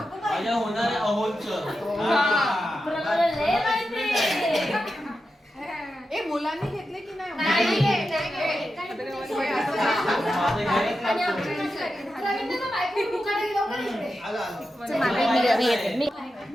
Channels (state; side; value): normal; both; correlation 0.90